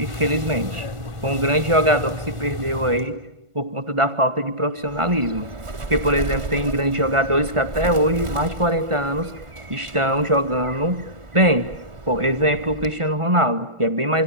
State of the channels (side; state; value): left; late; 1.4 ms